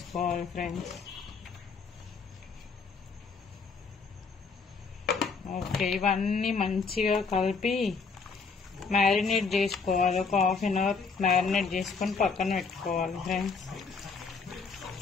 ఫ్రెండ్స్. ఓకే, ఇవన్నీ మంచిగా కలిపి మ్యారినేట్ చేసుకోవాలి. ఒక హాఫ్ అన్ అవర్ మ్యారినేట్ చేసుకొని పక్కన పెట్టుకోవాలి ఫ్రెండ్స్.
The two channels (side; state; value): right; quieter; 4.9 dB